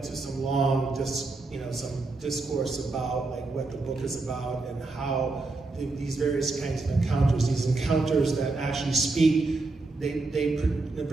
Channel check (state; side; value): quieter; left; 3.5 dB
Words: some long, some discourse about like what the book is about and how these various kinds of encounters, these encounters that actually speak, they